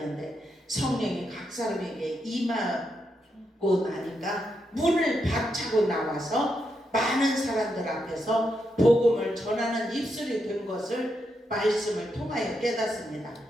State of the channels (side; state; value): both; normal; correlation 0.82